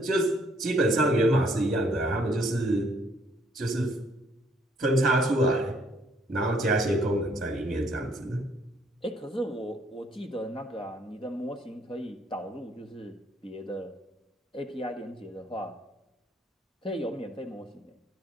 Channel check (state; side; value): normal; both; correlation 0.66